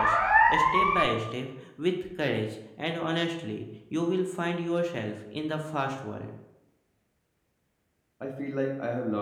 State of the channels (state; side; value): identical; both; correlation 1.00